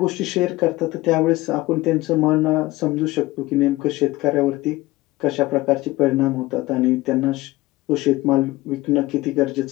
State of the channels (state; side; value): quieter; right; 19.1 dB